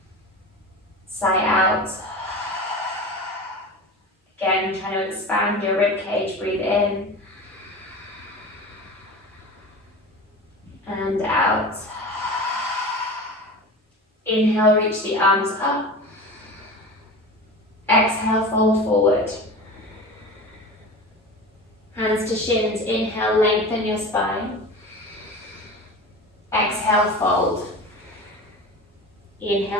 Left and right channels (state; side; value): normal; both; correlation 0.32